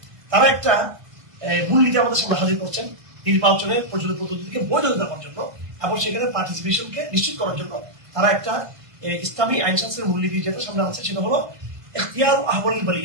তারা একটা মূলনীতি আমাদের সামনে হাজির করছেন নির্বাচনের প্রচলিত পদ্ধতিকে বৈধতা দেওয়ার জন্য এবং সেখানে পার্টিসিপেশনকে নিশ্চিত করার জন্য। তারা একটা ইসলামী আইন শাস্ত্রের মূলনীতি যেটা সামনে আছে সেটা হলো ইখতিয়ারু আহওয়ালিল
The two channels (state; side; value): late; left; 1.2 ms